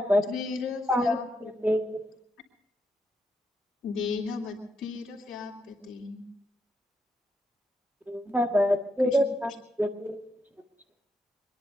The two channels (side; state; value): both; normal; correlation 0.81